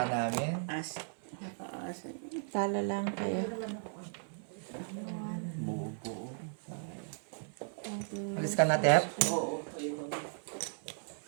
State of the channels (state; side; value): silent; left; 54 dB below the other